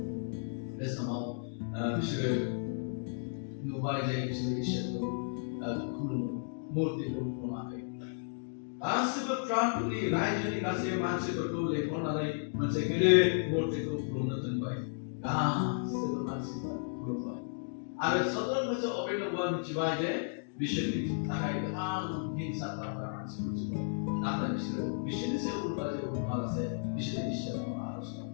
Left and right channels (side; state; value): right; silent; digital silence